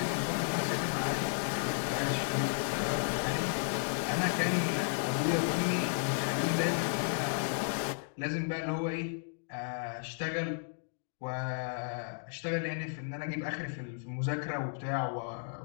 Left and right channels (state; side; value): silent; right; digital silence